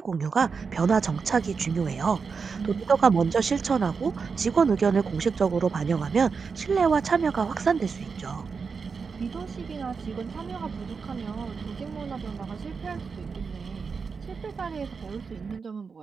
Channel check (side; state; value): left; quieter; 5.3 dB